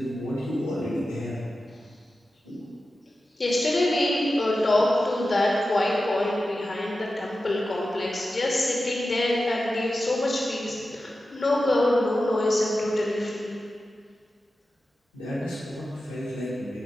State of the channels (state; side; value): normal; both; correlation 0.93